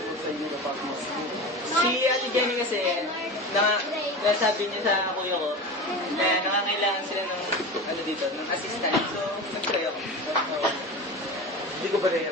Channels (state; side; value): normal; both; correlation 0.29